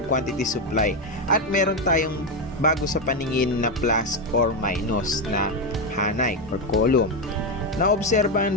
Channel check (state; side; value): normal; both; correlation 0.08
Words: quantity supply. At meron tayong bago sa paningin na plus or minus na hanay or column.